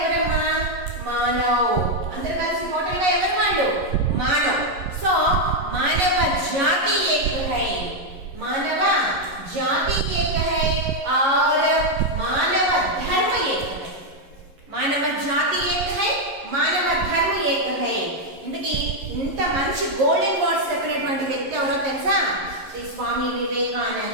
మానవ్. అందరూ కలిసి టోటల్ గా ఎవరు? వాళ్ళు మానవ్. సో మానవ జాతి ఏక్ హై. మానవ జాతి ఏక్ హై और మానవ ధర్మ ఏక్ హై. మానవ జాతి ఏక్ హై, మానవ ధర్మ ఏక్ హై. ఇంతకీ ఇంత మంచి గోల్డెన్ వర్డ్స్ చెప్పినటువంటి వ్యక్తి ఎవరో తెలుసా? శ్రీ స్వామి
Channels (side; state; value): left; late; 11 ms